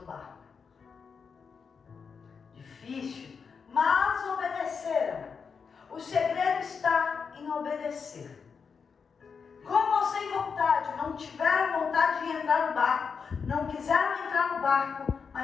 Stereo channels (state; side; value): quieter; right; 5.8 dB